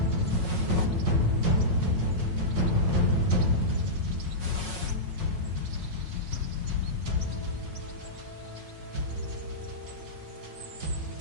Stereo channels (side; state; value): left; late; 5.5 ms